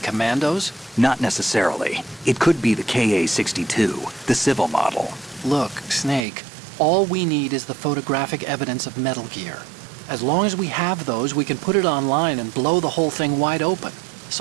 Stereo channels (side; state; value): left; drops out; at 6.2 s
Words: Not necessarily. It could be the Ka-62, the civil model. Look, Snake, all we need is the photographic evidence of Metal Gear. As long as we have those, we can put it online and blow the whole thing wide open.